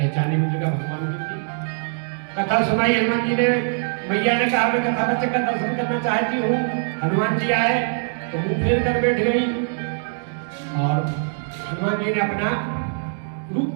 मुद्रिका भगवान की थी। कथा सुनाई हनुमान जी ने। मैया ने कहा मैं कथा बच्चे का दर्शन करना चाहती हूँ। हनुमान जी आए तो मुंह फेर कर बैठ गई और हनुमान जी ने अपना रूप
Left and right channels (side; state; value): left; silent; digital silence